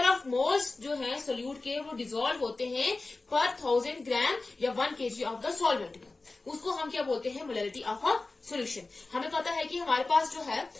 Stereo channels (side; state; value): right; quieter; 3.4 dB